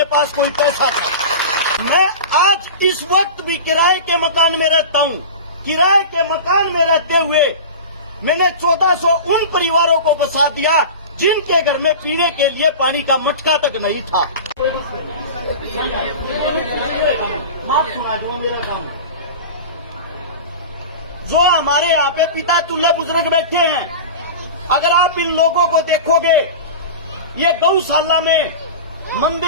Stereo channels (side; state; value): both; inverted; correlation -0.31